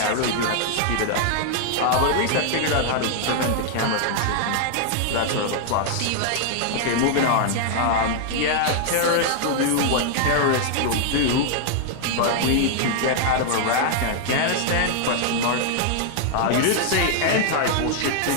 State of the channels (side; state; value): both; different; correlation 0.00